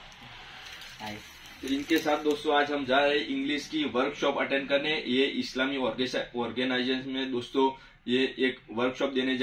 तो इनके साथ दोस्तों आज हम जा रहे हैं इंग्लिश की वर्कशॉप अटेंड करने। ये इस्लामी ऑर्गेनाइजेशन में दोस्तों ये एक वर्कशॉप देने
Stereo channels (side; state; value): both; identical; correlation 1.00